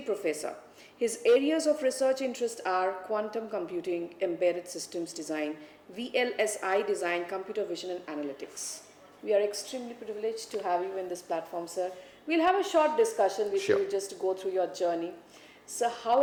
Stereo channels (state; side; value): identical; both; correlation 1.00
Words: professor. His areas of research interest are quantum computing, embedded systems design, VLSI design, computer vision and analytics. We are extremely privileged to have you in this platform, sir. We'll have a short discussion with you just to go through your journey. So how